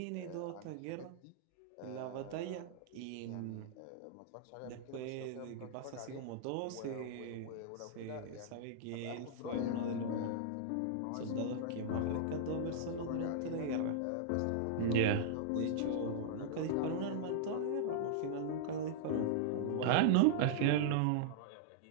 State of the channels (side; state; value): both; different; correlation -0.01